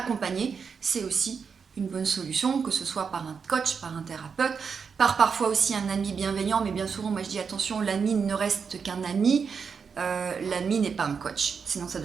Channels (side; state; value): left; quieter; 6.0 dB